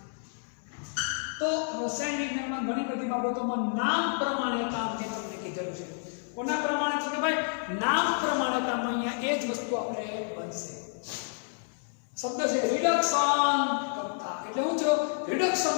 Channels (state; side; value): silent; right; 58 dB below the other